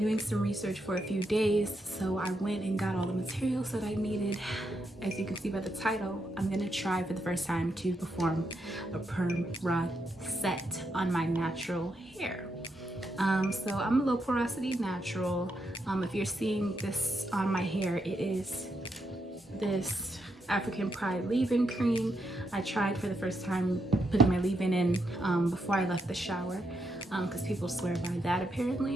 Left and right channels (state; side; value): normal; both; correlation 0.81